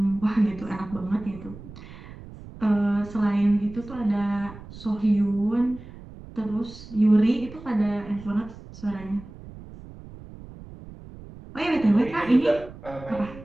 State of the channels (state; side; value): noise; right; rumble, 16 dB below the sound